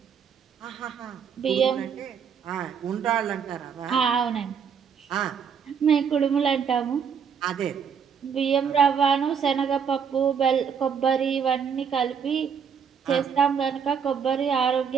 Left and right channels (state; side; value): quieter; left; 7.0 dB